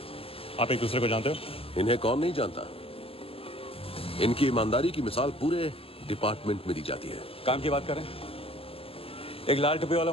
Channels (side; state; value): right; late; 0.27 ms